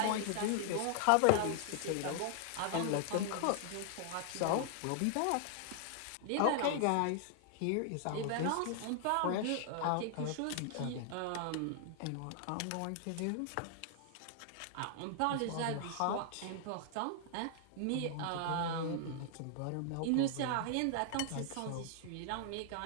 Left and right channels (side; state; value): both; different; correlation 0.00